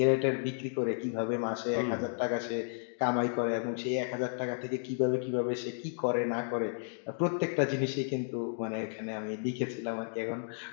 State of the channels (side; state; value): right; silent; digital silence